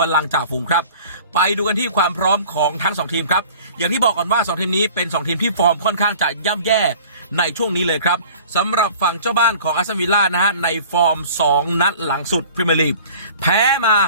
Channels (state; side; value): inverted; both; correlation -0.46